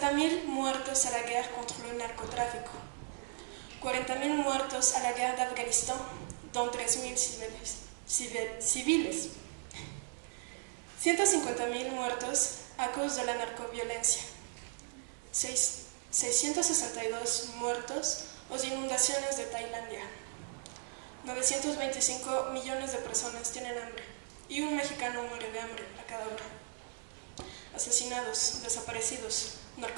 muertos a la guerre contre le narcotráfico. 40.000 muertos a la guerre d'Afghanistan, dont 13.000 civiles. 150.000 muertos a causa de la narcoviolencia. 662 muertos en inundaciones de Tailandia. 925 millones de personas tienen hambre y un mexicano muere de hambre a cada hora. Asesinados, desaparecidos,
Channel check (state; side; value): silent; left; 53 dB below the other